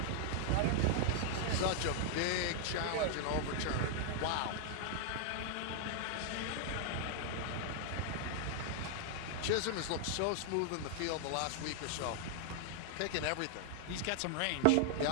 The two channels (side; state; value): both; different; correlation 0.00